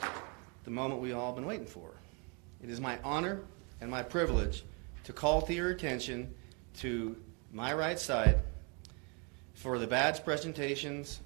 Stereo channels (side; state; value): left; quieter; 34.3 dB